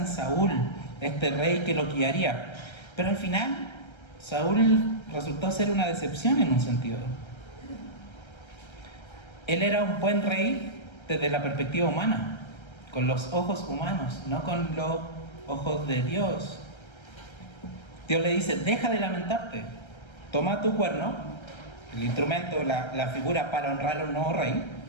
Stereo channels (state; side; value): late; right; 1.3 ms